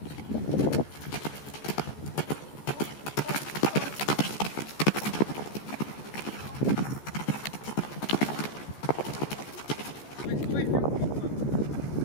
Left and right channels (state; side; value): late; right; 14 ms